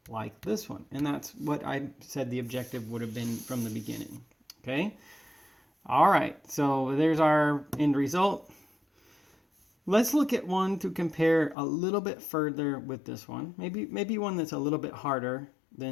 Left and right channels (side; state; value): right; drops out; at 11.6 s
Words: like this one. And that's what I said the objective would have been from the beginning. Okay? All right, so there's our end result. Let's look at one to compare a little bit further with this one. Maybe one that's a little bit harder